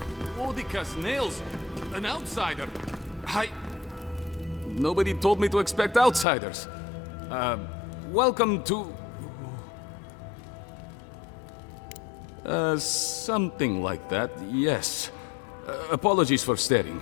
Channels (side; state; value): right; drops out; at 6.2 s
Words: Odica's nails! An outsider! Nobody told me to expect outsiders. Welcome to... something like that, yes. Apologies for staring.